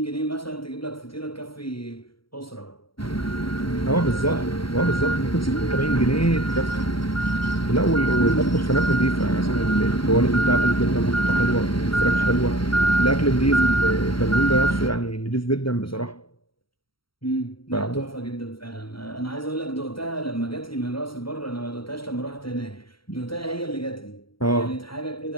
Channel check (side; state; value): right; late; 0.74 ms